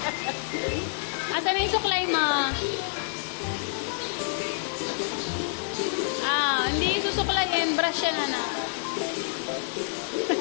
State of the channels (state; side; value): silent; right; digital silence